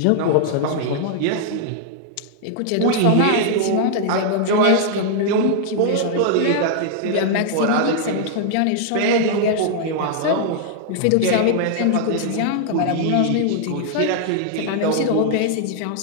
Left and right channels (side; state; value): both; different; correlation -0.01